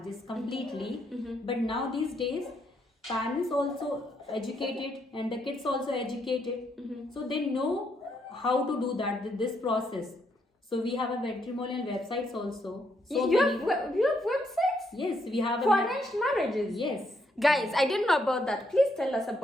completely. But now these days, parents also educated and the kids also educated. So they know how to do that, this process. So we have a matrimonial websites also. So you have websites? Yes, we have For arranged marriages? Yes. Guys, I didn't know about that. Please tell us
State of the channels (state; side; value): normal; both; correlation 0.75